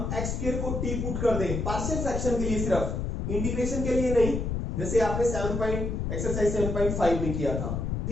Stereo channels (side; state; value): left; noise; rumble, 2 dB below the sound